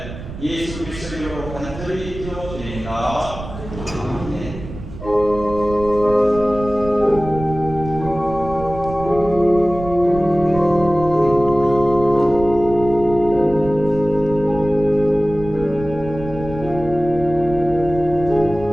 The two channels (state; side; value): noise; right; rumble, 12 dB below the sound